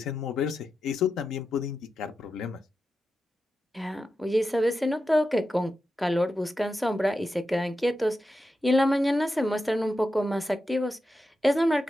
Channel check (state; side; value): normal; both; correlation 0.89